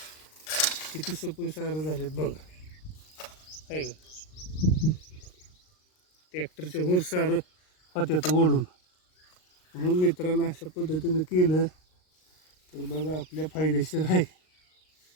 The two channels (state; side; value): late; right; 38 ms